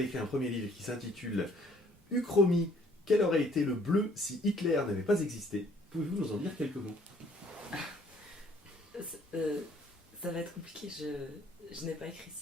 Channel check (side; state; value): both; normal; correlation 0.61